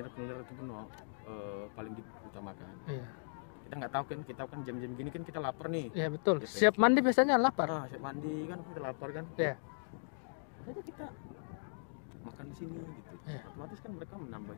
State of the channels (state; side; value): silent; right; digital silence